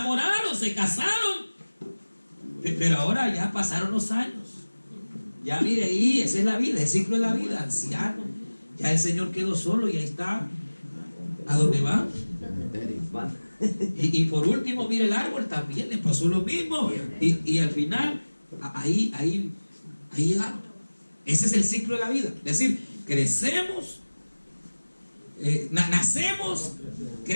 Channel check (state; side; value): inverted; both; correlation -1.00